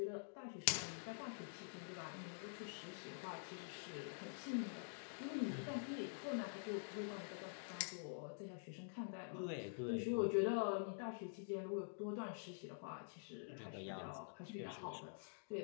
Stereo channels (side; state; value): right; silent; digital silence